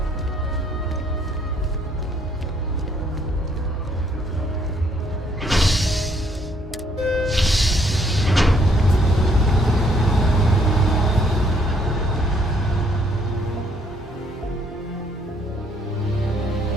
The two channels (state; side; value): normal; both; correlation 0.67